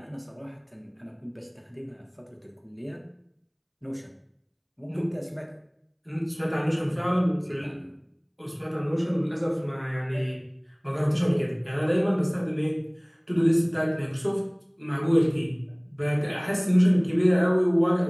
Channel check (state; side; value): identical; both; correlation 1.00